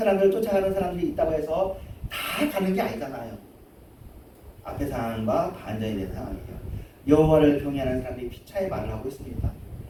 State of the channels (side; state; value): both; identical; correlation 1.00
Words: 쫓아가는 사람들이 있다고 해서 다 가는 게 아니잖아요. 앞의 상황과 반전이 되는 상황이에요. 여호와를 경외하는 사람들이 피차에 말을 하고 있습니다.